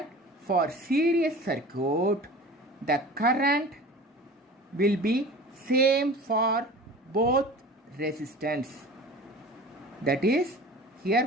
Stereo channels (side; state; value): both; normal; correlation 0.39